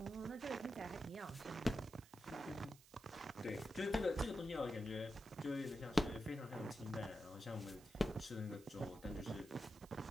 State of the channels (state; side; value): noise; right; hiss, 22 dB below the sound